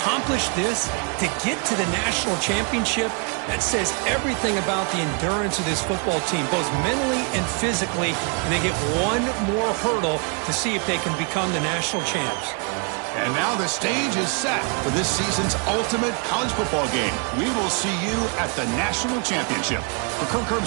this, to get to the national championship, that says everything about the endurance of this football team, both mentally and physically, and they get one more hurdle to see if they can become the national champs. And now the stage is set for this season's ultimate college football game. We will see you at the national championship. For Kirk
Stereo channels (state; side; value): quieter; left; 35.9 dB